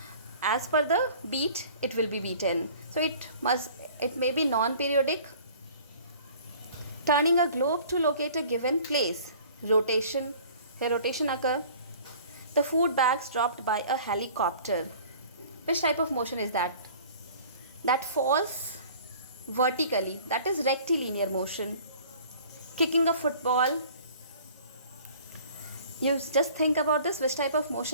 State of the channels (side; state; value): both; inverted; correlation -0.49